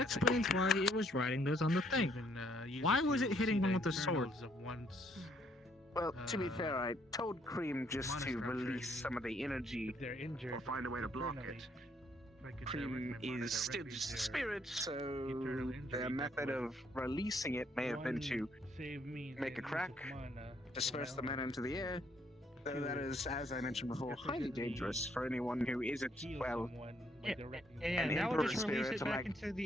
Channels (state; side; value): normal; both; correlation 0.68